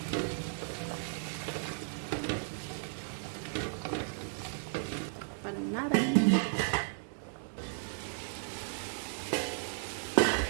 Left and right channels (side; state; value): left; silent; 55 dB below the other